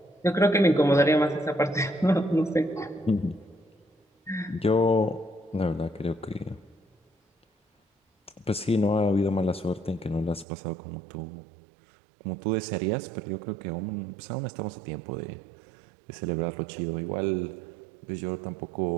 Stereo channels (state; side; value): drops out; left; at 10.5 s